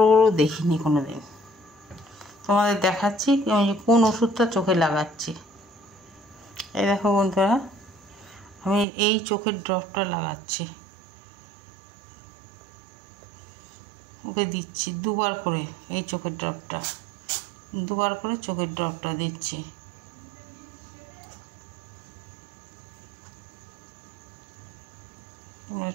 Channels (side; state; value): left; drops out; at 8.8 s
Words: বড় দেখিনি কোনো দিন। তোমাদের দেখাচ্ছি আমি কোন ওষুধটা চোখে লাগাচ্ছি। এই দেখো বন্ধুরা, আমি এই চোখের ড্রপটা লাগাচ্ছি, ওকে দিচ্ছি 2বার করে। এই চোখের ড্রপটা 2বার করে চোখের ড্রপটা দিচ্ছি। তোমরা